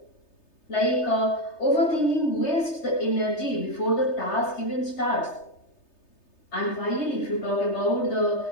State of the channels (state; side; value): late; right; 3.3 ms